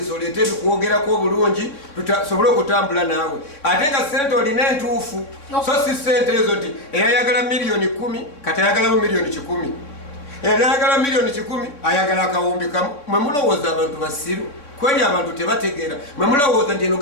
oleete ebikwogerako obulungi tusobole okutambula naawe ate nga sente olina entuufu so si sente ezo nti eyayagala miliyoni 10 kati ayagalamu miliyoni 100 eyayagala miliyoni 10 ayagala akawumbi kamu mwe mulowooza abantu basiru kweli abantu tebategeera mwe mulowooza nti eno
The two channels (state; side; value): late; right; 3.6 ms